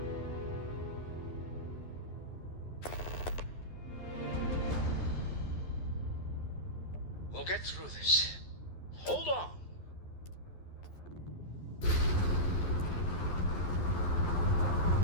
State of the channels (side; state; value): right; late; 11 ms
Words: We'll get through this. Hold on.